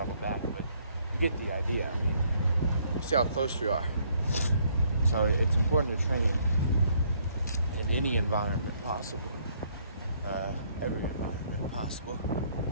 back. But you get the idea. I mean, you see how close we are. So it's important to train in any environment possible. Every environment possible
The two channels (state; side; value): inverted; both; correlation -0.67